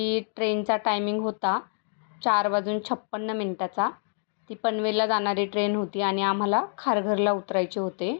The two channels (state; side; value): silent; right; digital silence